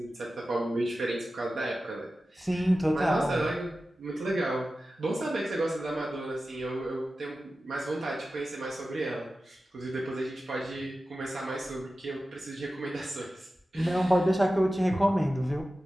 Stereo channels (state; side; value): normal; both; correlation 0.94